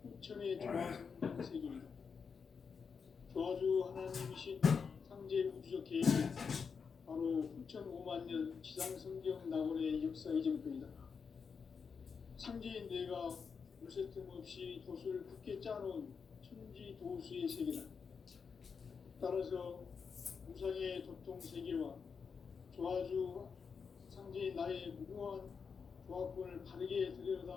후천의 조화성경 세계이다. 조화주 하나님이신 상제 우주적 계획이 바로 후천 5만 년 지상성경 낙원의 역사 이전표이다. 상제인 내가 무쇠 틈 없이 도수를 굳게 짜놓은 천지 도수의 세계다. 따라서 무상의 도통 세계와 조화주 상제인 나의 무궁한 조화권을 바르게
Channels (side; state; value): right; quieter; 5.8 dB